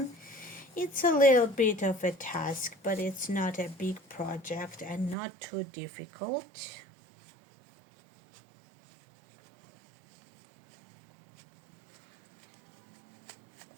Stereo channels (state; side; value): drops out; left; at 5.2 s